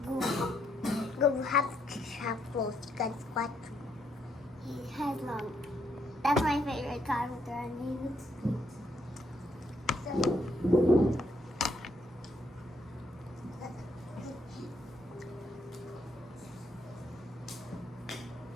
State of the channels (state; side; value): normal; both; correlation 0.74